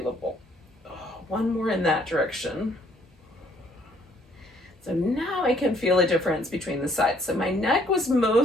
One more in that direction. So now I can feel a difference between the sides. So my neck was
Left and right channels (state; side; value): normal; both; correlation 0.64